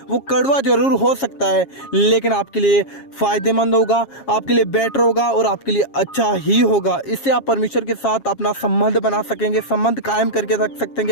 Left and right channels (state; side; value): late; right; 7.3 ms